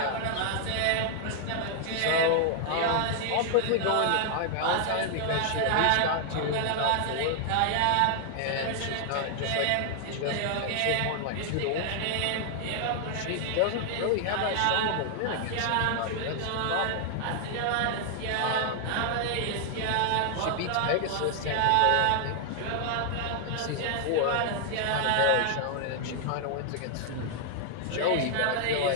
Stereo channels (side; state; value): both; different; correlation 0.00